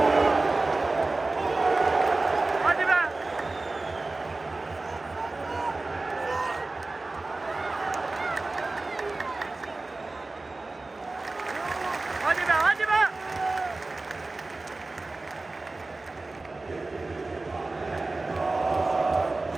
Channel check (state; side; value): quieter; left; 3.3 dB